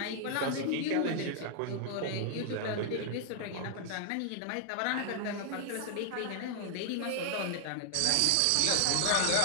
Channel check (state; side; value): different; both; correlation 0.00